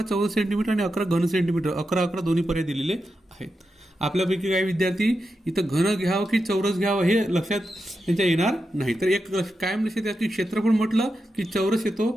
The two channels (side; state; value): both; normal; correlation 0.88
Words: चौरस सेंटीमीटर आणि 11 घन सेंटीमीटर, 11 11 दोन्ही पर्याय दिलेले आहेत. आपल्यापैकी काही विद्यार्थी इथं घन घ्यावं की चौरस घ्यावं हे लक्षात त्यांच्या येणार नाही. तर एक कायम लक्षात द्या की क्षेत्रफळ म्हटलं की चौरस